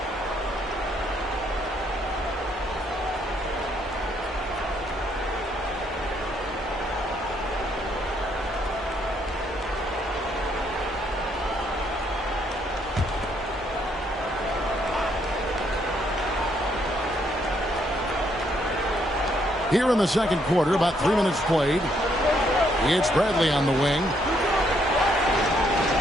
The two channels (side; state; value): both; normal; correlation 0.71